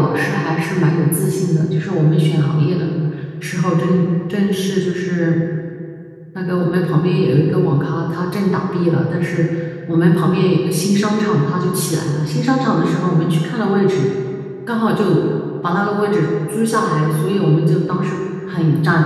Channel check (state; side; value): identical; both; correlation 1.00